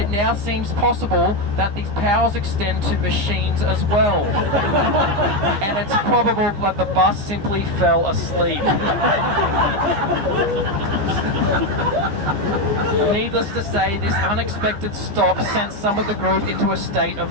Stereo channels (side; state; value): left; late; 15 ms